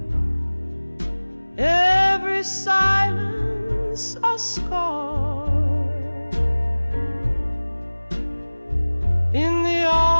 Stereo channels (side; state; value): both; inverted; correlation -1.00